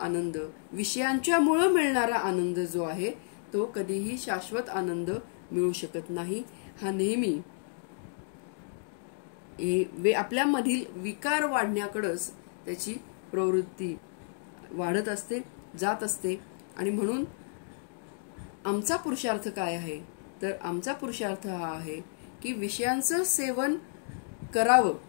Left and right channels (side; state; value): right; silent; digital silence